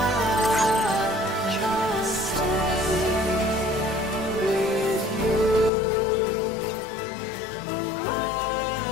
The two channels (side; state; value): right; drops out; at 5.7 s